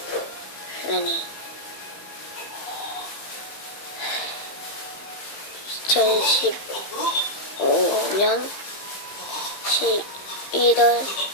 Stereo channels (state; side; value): late; right; 15 ms